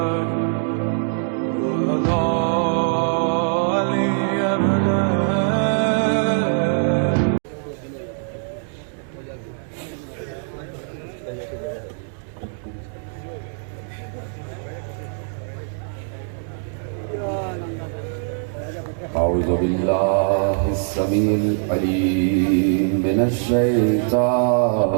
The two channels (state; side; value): silent; left; 61 dB below the other